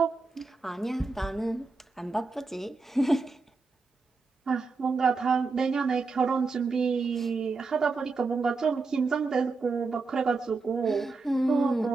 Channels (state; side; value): quieter; left; 4.1 dB